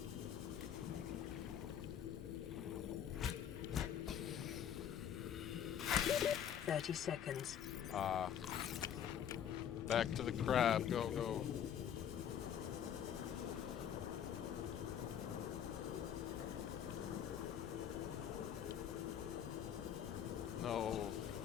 "30 seconds. Back to the crab. Go, go. No.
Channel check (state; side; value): quieter; right; 9.2 dB